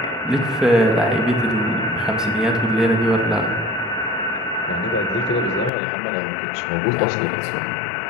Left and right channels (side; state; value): right; drops out; at 5.7 s